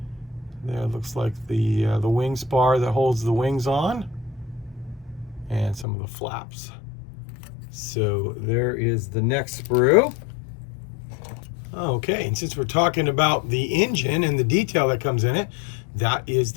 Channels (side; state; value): right; drops out; at 5.9 s